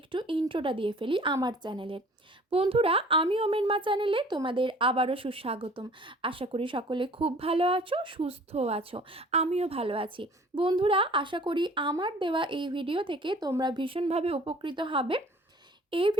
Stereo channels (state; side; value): normal; both; correlation 0.51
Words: ইন্ট্রোটা দিয়ে ফেলি আমার চ্যানেলের। বন্ধুরা, আমি ওমেন মা চ্যানেলে তোমাদের আবারও সুস্বাগতম। আশা করি সকলে খুব ভালো আছো, সুস্থ আছো, আমিও ভালো আছি। বন্ধুরা, আশা করি আমার দেওয়া এই ভিডিও থেকে তোমরা ভীষণভাবে উপকৃত হবে। এই